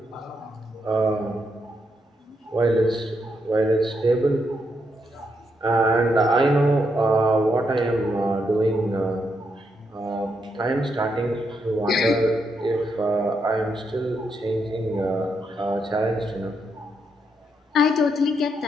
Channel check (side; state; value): both; normal; correlation 0.80